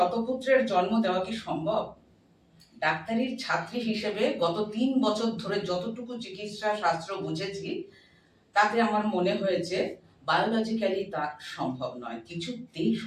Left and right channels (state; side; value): identical; both; correlation 1.00